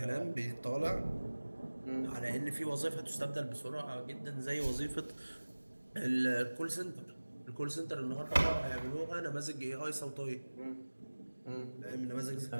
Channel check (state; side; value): inverted; both; correlation -1.00